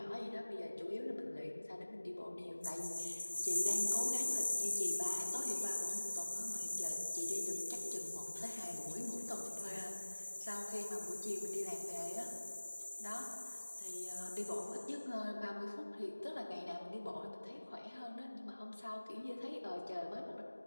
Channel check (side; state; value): both; inverted; correlation -1.00